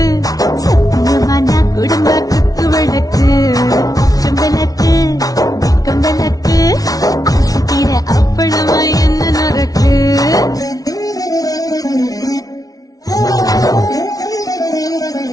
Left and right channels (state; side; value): late; right; 0.18 ms